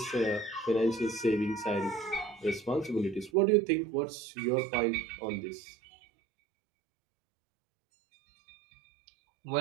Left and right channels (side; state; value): left; drops out; at 3.3 s